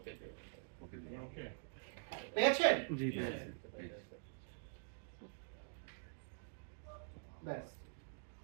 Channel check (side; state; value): left; silent; digital silence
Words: okay পেয়েছেন জি পেয়েছি ব্যাস